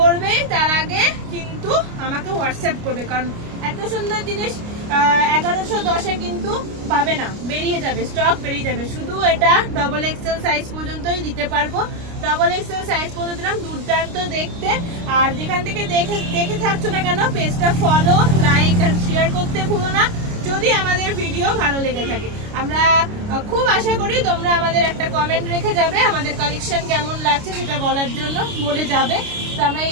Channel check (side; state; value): left; late; 29 ms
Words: তার আগে কিন্তু আমাকে হোয়াটসঅ্যাপ করবে, কারণ এত সুন্দর জিনিস 1110-এ কিন্তু পাবে না, বেরিয়ে যাবে, স্টক বেরিয়ে যাবে। শুধু এটা ডবল এক্সেল সাইজ পর্যন্তই দিতে পারবো, ডবল এক্সেল সাইজ পর্যন্ত দিলাম, দুর্দান্ত দেখতে। আর যেখান থেকে দেখে থাকছো না কেন, পেজটা ফলো, লাইক আর শেয়ার করতে ভুলো না যদি আমাদের ভিডিও ভালো লেগে থাকে। আমরা খুব আশা করি তোমরা আমাদের একটা কমেন্ট রেখে যাবে, আমাদের কালেকশন কেমন লাগছে সেটা বলার জন্য বলে যাবে। তো আমরা এই